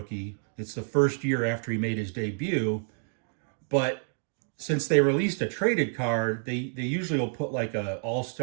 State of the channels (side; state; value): left; silent; 59 dB below the other